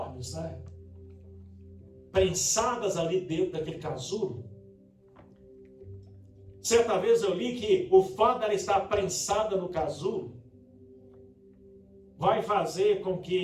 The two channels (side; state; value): both; identical; correlation 1.00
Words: né? Prensadas ali dentro daquele casulo. Certa vez eu li que o fato dela estar prensada no casulo vai fazer com